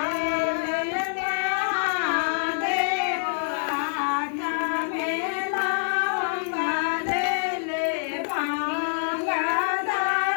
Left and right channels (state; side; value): silent; right; 55 dB below the other